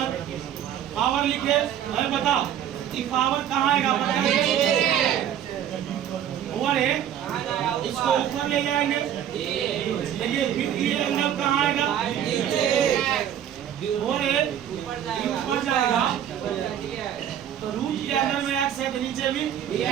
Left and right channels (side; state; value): left; quieter; 10.1 dB